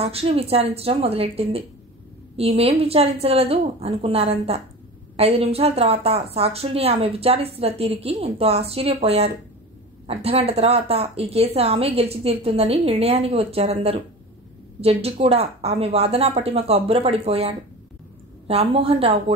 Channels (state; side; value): normal; both; correlation 0.33